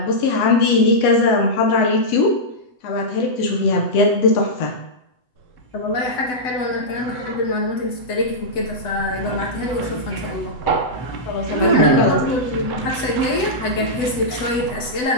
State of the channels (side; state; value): right; late; 7.9 ms